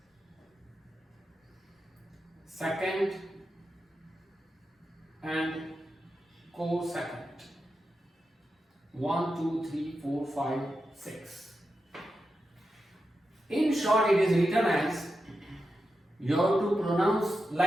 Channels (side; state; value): both; normal; correlation 0.89